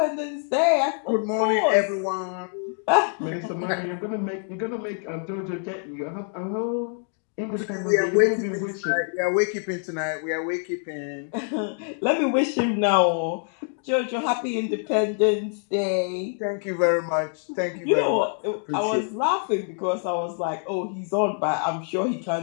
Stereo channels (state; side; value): silent; right; 55 dB below the other